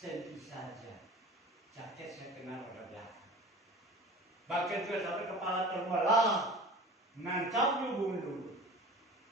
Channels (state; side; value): normal; both; correlation 0.39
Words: saja jaket saya kena roda belakang. Bahkan juga sampai kepala terbelah, nancap mundur.